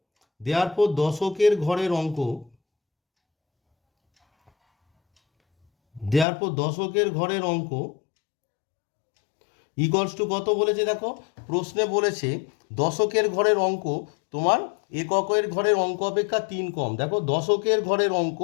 দেয়ারফর দশকের ঘরের অঙ্ক ইকুয়ালস টু কত বলেছে? দেখো প্রশ্নে বলেছে দশকের ঘরের অঙ্ক তোমার এককের ঘরের অঙ্ক অপেক্ষা 3 কম। দেখো দশকের ঘরের অঙ্ক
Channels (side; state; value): right; drops out; at 6.2 s